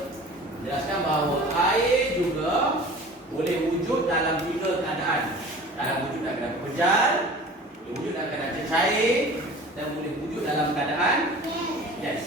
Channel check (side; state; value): both; normal; correlation 0.42